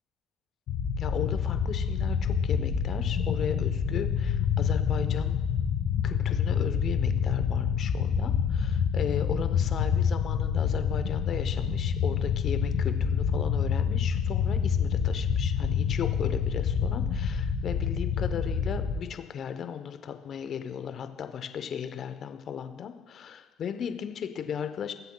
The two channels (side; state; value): right; quieter; 6.9 dB